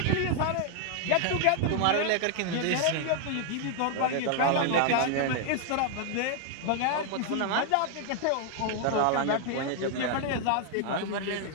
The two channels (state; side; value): different; both; correlation 0.00